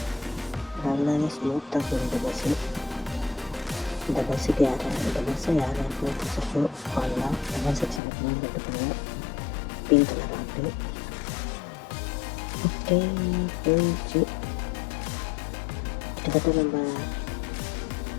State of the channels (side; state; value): right; drops out; at 8.0 s